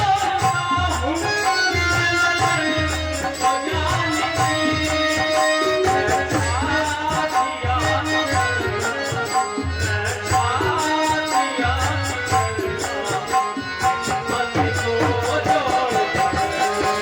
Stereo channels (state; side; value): identical; both; correlation 1.00